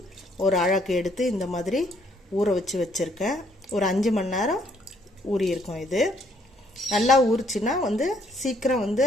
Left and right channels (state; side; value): normal; both; correlation 0.67